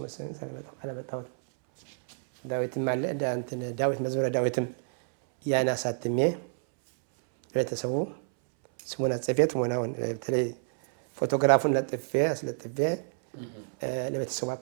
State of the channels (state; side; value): silent; left; 59 dB below the other